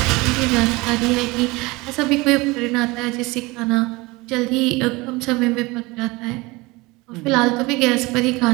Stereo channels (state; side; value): quieter; left; 23.1 dB